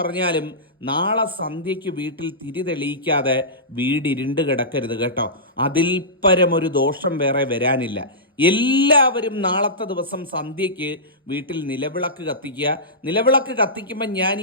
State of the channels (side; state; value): both; normal; correlation -0.18